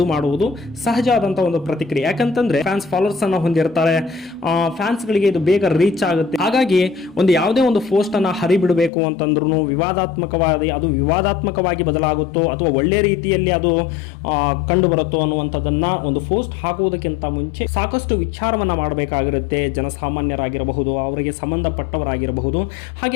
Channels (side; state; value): right; drops out; at 8.9 s